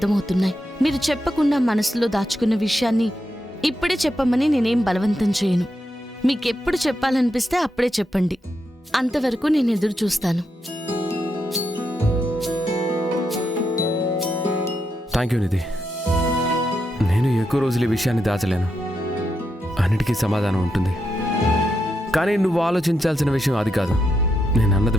మీరు చెప్పకుండా మనసులో దాచుకున్న విషయాన్ని ఇప్పుడే చెప్పమని నేనేం బలవంతం చేయను. మీకెప్పుడు చెప్పాలనిపిస్తే అప్పుడే చెప్పండి. అంతవరకు నేను ఎదురు చూస్తాను. థ్యాంక్ యూ నిధి. నేను ఎక్కువ రోజులు ఈ విషయాన్ని దాచలేను. అన్నిటికీ సమాధానం ఉంటుంది. కానీ నువ్వు ఆలోచించాల్సిన విషయం అది కాదు. నేను అన్నది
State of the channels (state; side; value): normal; both; correlation 0.84